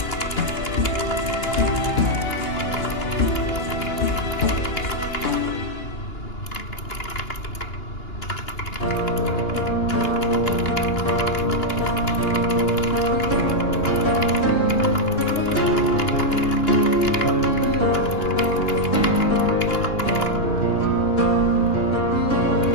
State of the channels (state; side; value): late; right; 2.9 ms